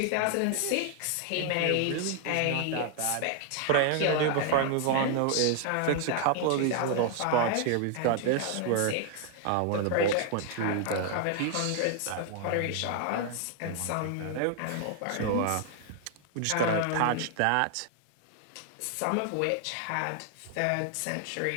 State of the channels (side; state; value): both; different; correlation 0.00